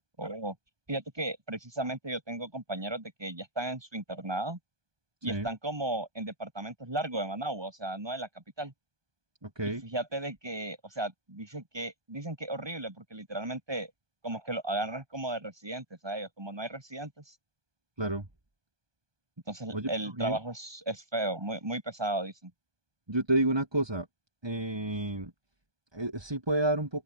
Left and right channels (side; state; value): left; late; 1.2 ms